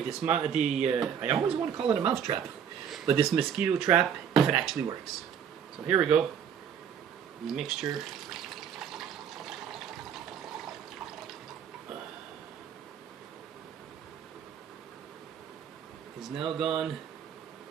this, I always want to call it a mouse trap, but this mosquito trap, if it actually works. So here we go. The mixture. Is now gone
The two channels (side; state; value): left; quieter; 8.1 dB